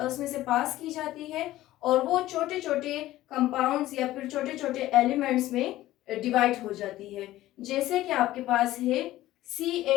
से पास की जाती है और वो छोटे छोटे कंपाउंड्स या फिर छोटे छोटे एलिमेंट्स में डिवाइड हो जाती है। जैसे कि आपके पास है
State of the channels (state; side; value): quieter; right; 15.5 dB